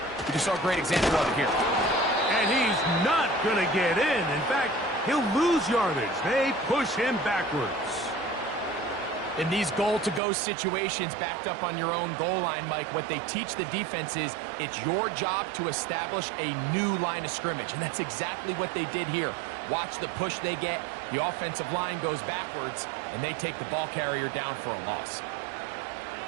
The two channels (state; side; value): drops out; left; at 10.2 s